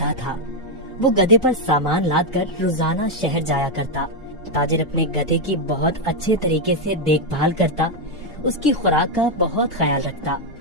था। वो गधे पर सामान लाद कर रोजाना शहर जाया करता। ताजिर अपने गधे की बहुत अच्छे तरीके से देखभाल करता, उसकी खुराक का बहुत ख्याल रखता,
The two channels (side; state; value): both; normal; correlation 0.02